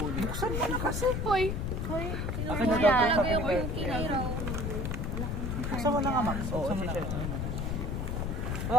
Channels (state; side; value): noise; left; rumble, 1 dB below the sound